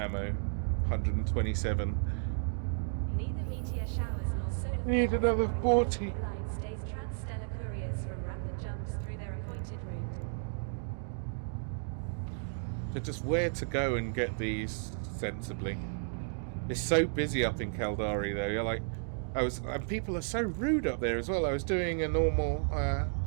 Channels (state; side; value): silent; left; digital silence